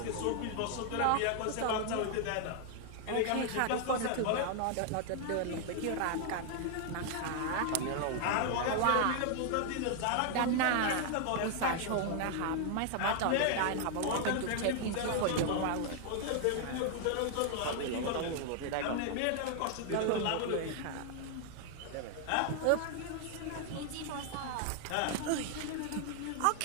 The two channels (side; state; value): both; different; correlation 0.00